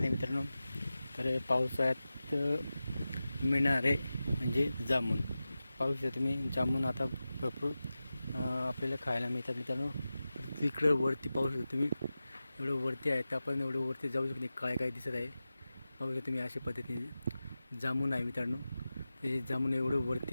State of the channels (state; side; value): inverted; both; correlation -0.94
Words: मित्रांनो. तर पावसाळ्यात मिळणारे म्हणजे जामून. पाहू शकता तुम्ही, जामून आता भरपूर आपल्याला खायला मिळतात मित्रांनो. तिकडं वरती पाहू शकता तुम्ही, एवढं वरती आहे तर आपण एवढं वरती जाऊ शकतो नाही. काय दिसत आहे पाहू शकता तुम्ही. अशा पद्धतीने जामून आहे मित्रांनो. ते जामून एवढं